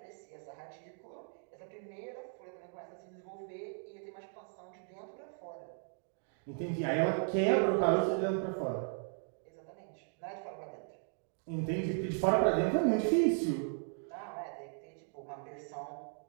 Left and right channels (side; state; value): left; silent; 53 dB below the other